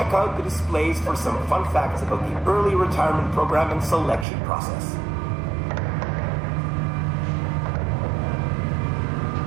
out the displays for some fun facts about the early retirement program and selection process.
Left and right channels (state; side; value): drops out; left; at 4.2 s